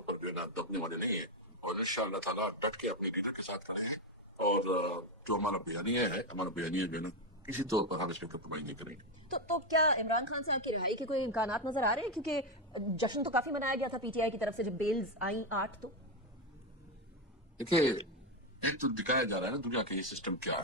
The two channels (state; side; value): normal; both; correlation 0.08